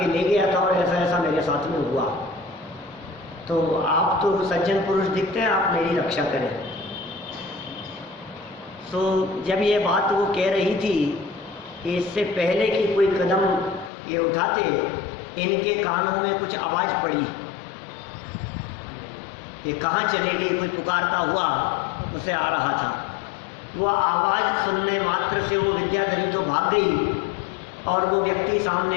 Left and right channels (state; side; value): drops out; right; at 13.9 s